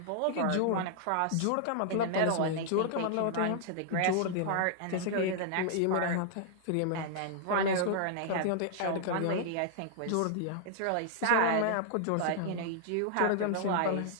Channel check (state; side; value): different; both; correlation -0.01